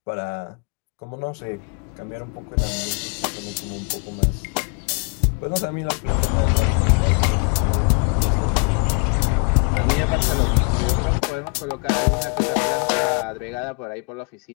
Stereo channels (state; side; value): quieter; right; 35.0 dB